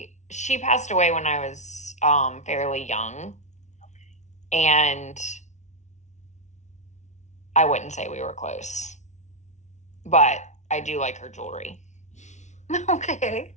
she passed away when I was fairly young, and I wouldn't say we were close, but I do like her jewelry. Okay.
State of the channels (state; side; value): late; right; 0.34 ms